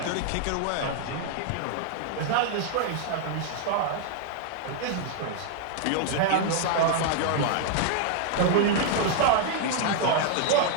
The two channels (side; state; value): both; different; correlation 0.00